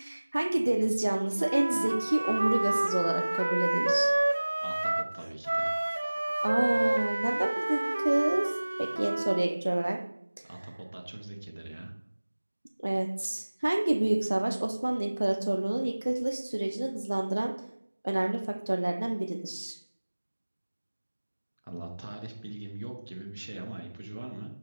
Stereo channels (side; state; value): both; inverted; correlation -1.00